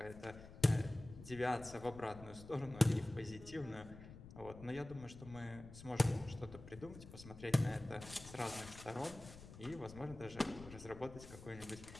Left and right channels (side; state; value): left; noise; rumble, 15 dB below the sound